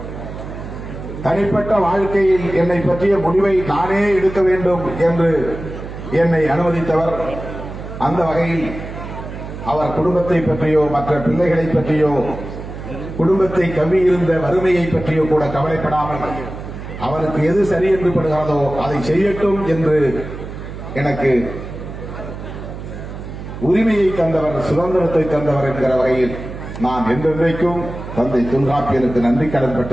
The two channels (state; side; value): noise; right; hum, 10 dB below the sound